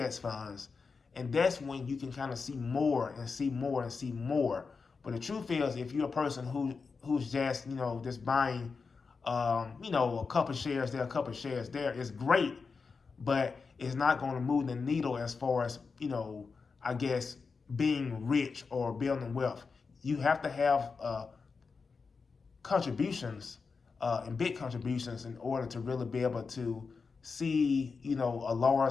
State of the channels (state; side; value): quieter; right; 4.9 dB